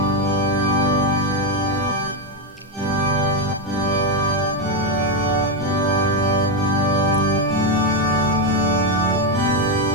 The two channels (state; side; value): normal; both; correlation 0.06